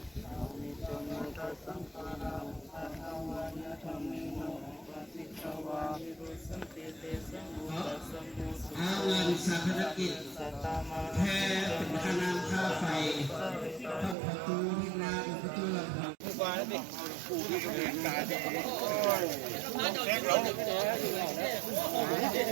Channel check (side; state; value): left; drops out; at 14.2 s